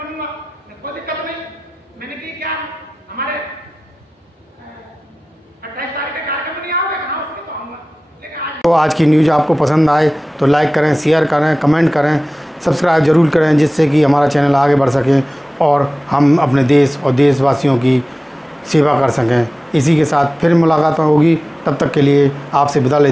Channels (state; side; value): normal; both; correlation 0.97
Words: बनूंगा, कोई दिक्कत नहीं। मैंने की क्या, हमारे 28 तारीख का कार्यक्रम नहीं आओगे, कहा उसमें तो आऊंगा, लेकिन आज तो आज की न्यूज़ आपको पसंद आए तो लाइक करें, शेयर करें, कमेंट करें, सब्सक्राइब जरूर करें, जिससे कि हमारा चैनल आगे बढ़ सके और हम अपने देश और देशवासियों की सेवा कर सकें। इसी के साथ फिर मुलाकात होगी, तब तक के लिए आपसे विदा